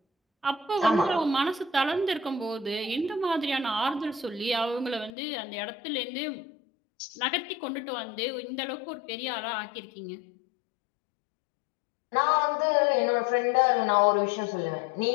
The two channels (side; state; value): right; drops out; at 5.1 s